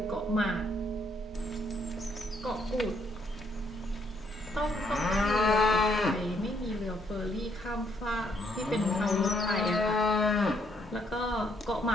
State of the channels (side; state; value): both; normal; correlation 0.70